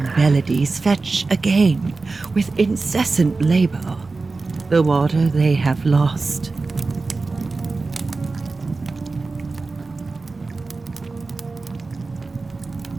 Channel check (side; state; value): left; quieter; 3.8 dB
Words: melodies fetch again with incessant labor the water they have lost.